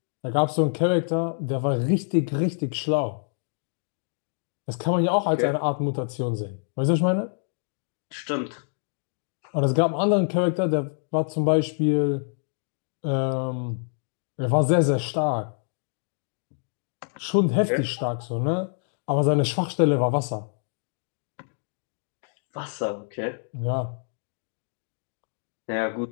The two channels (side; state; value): right; silent; digital silence